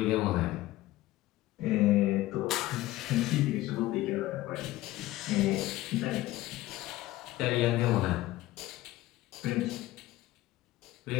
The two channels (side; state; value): right; quieter; 16.8 dB